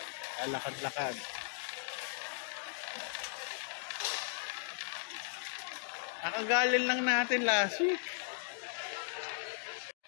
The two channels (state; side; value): silent; right; digital silence